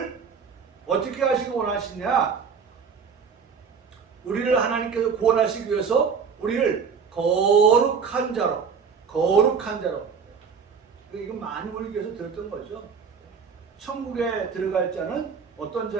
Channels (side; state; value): left; quieter; 6.0 dB